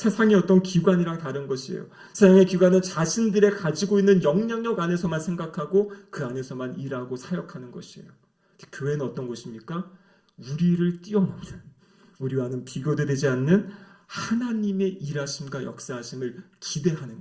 어떤 기관이랑 다른 것이에요. 세상의 기관은 자신들의 가지고 있는 영향력 안에서만 생각하고 그 안에서만 일하고 사역하는 것이에요. 교회는 어떤 곳입니까? 우리를 뛰어넘는 우리와는 비교되지 않는 하나님의 일하심과 역사하심을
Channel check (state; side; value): identical; both; correlation 1.00